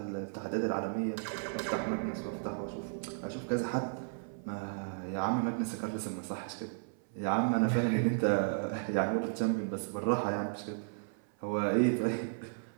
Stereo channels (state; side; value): silent; left; 55 dB below the other